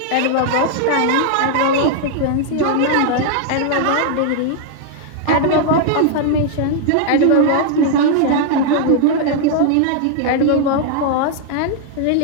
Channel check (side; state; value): both; different; correlation 0.00